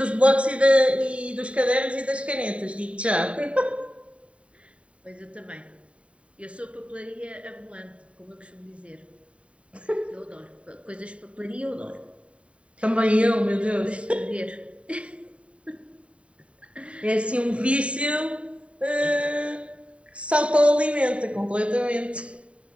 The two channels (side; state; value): left; late; 0.062 ms